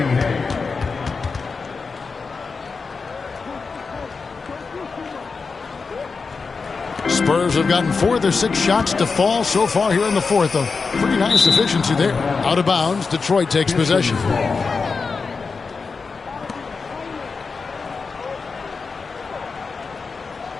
Spurs have gotten 4 of their 6 shots to fall so far here in the fourth. A pretty nice efficiency there. Out of bounds, Detroit takes possession.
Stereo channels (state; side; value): quieter; right; 4.7 dB